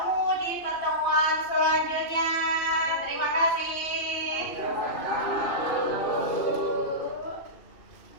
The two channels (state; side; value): late; right; 2.7 ms